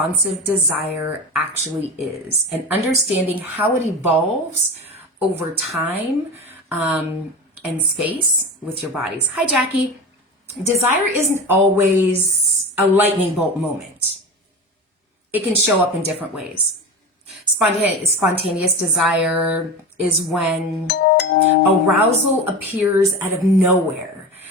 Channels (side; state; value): both; normal; correlation 0.28